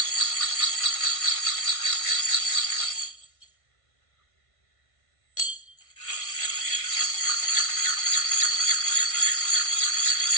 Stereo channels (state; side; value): late; right; 1.5 ms